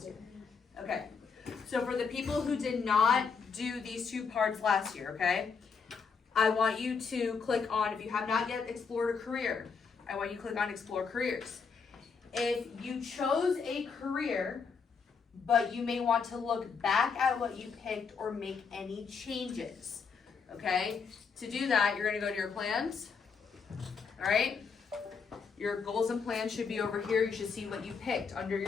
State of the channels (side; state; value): right; quieter; 5.6 dB